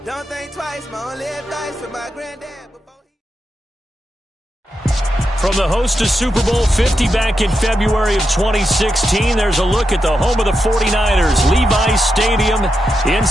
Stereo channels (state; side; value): normal; both; correlation 0.86